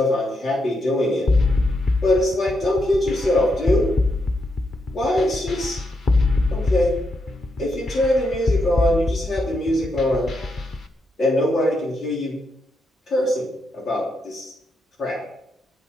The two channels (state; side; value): normal; both; correlation 0.82